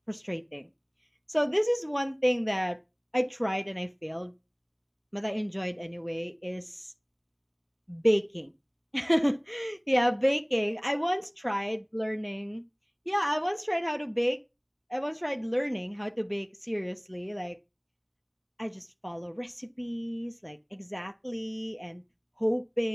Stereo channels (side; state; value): both; identical; correlation 1.00